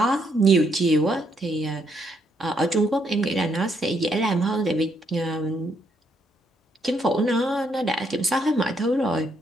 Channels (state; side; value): normal; both; correlation 0.74